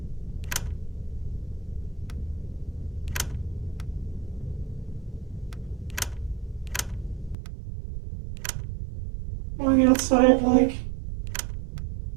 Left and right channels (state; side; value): drops out; left; at 7.4 s